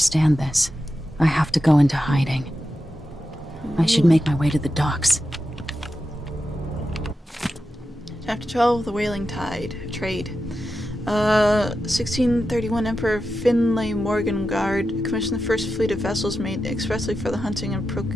this, I have to go into hiding. I should make my way to the docks. Chapter 12, The Whaling Trade. 1631 Emperor Finlay Morgengard commissioned the first fleet of vessels made expressly for the hunting and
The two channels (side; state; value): both; normal; correlation 0.90